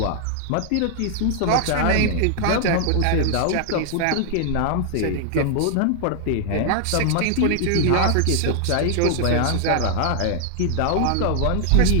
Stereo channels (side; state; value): both; different; correlation 0.00